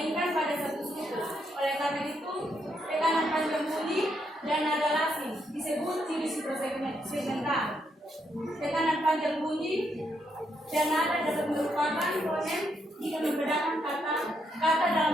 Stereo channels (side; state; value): both; normal; correlation 0.78